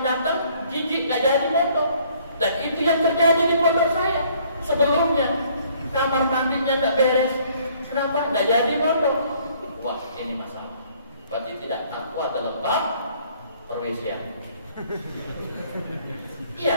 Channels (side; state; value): both; inverted; correlation -0.61